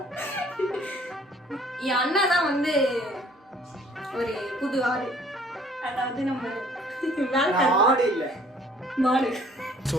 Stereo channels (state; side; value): normal; both; correlation 0.57